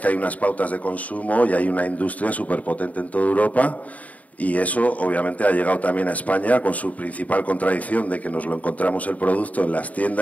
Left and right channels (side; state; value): right; late; 0.071 ms